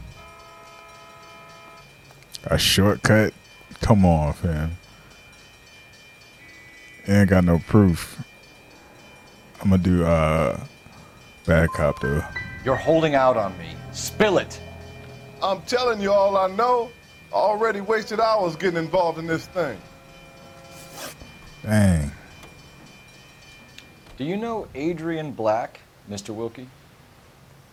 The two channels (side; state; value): both; identical; correlation 1.00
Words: A shortcut? Come on, fam. Ain't got no proof. I'm gonna do bad cop though. You're holding out on me. Spill it. I'm telling you all I know. Already wasted hours getting involved in this thing. Dang. Do you know Adrian Black, Mr. Wilkie?